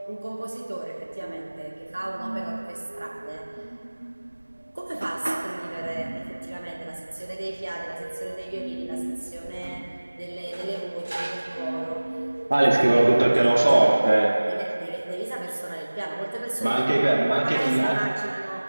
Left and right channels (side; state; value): both; inverted; correlation -1.00